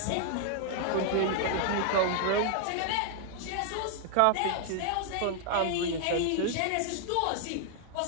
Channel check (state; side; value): different; both; correlation 0.00